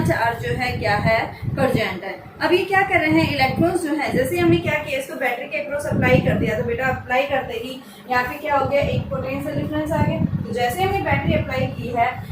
चार्ज जो है क्या है, प्रेजेंट है। अब ये क्या कर रहे हैं, इलेक्ट्रॉन्स जो है, जैसे हमने क्या किया, इसको बैटरी के अक्रॉस अप्लाई कर दिया, तो बेटा अप्लाई करते ही यहाँ पे क्या हो गया, एक पोटेंशियल डिफरेंस आ गया। तो जैसे हमने बैटरी अप्लाई की है,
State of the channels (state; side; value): identical; both; correlation 1.00